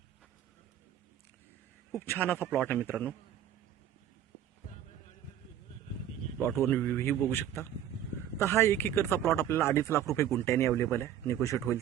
खूप छान असा प्लॉट आहे मित्रांनो. प्लॉटवर व्ह्यू बघू शकता. तर हा 1 एकरचा प्लॉट आपल्याला 2.5 लाख रुपये गुंठ्याने अवेलेबल आहे. निगोशिएट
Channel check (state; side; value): quieter; left; 10.5 dB